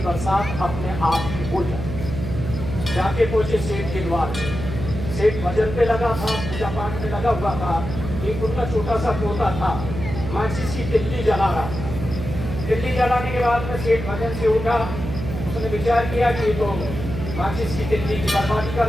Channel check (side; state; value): right; noise; hum, 6 dB below the sound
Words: बरसात अपने आप ही हो जाए। जाके पहुंचे सेठ के द्वार पे। सेठ भजन पे लगा था, पूजा पाठ में लगा हुआ था। एक उनका छोटा सा पोता था, माचिस की तिल्ली जला रहा। तिल्ली जलाने के बाद में सेठ भजन से उठा। उसने विचार किया कि तो माचिस की तिल्ली की बर्बादी कर